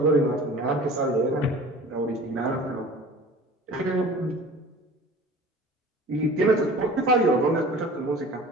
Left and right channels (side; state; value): both; normal; correlation 0.43